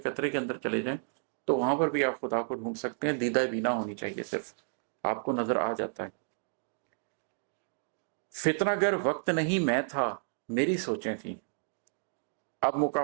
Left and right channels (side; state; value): left; silent; digital silence